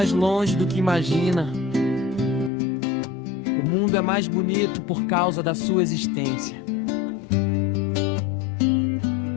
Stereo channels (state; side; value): drops out; right; at 2.5 s